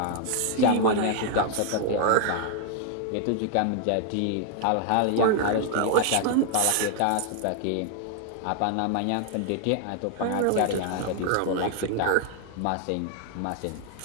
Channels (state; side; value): different; both; correlation 0.00